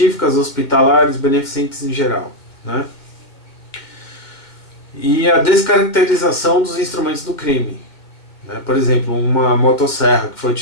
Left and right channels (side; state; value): right; late; 2.1 ms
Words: hospitalares, beneficentes em geral, né? E a descaracterização dos instrumentos do crime, né? Por exemplo, uma motosserra que foi